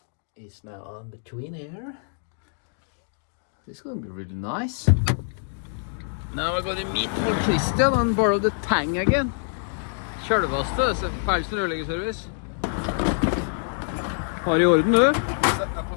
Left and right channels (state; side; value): silent; right; digital silence